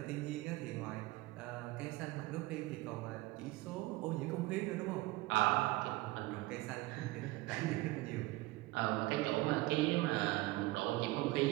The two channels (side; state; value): left; quieter; 19.8 dB